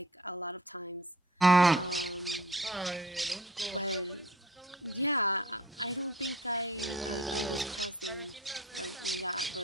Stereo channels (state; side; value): normal; both; correlation 0.48